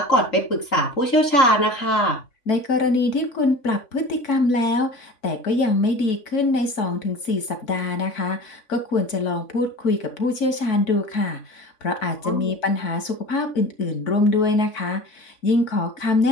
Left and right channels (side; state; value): right; late; 3.5 ms